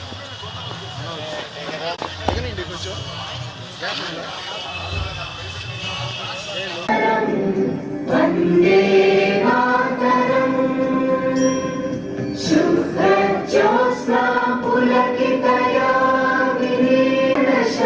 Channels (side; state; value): both; identical; correlation 1.00